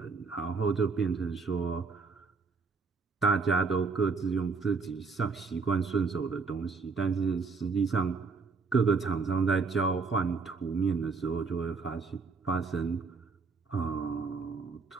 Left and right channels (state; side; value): quieter; left; 4.7 dB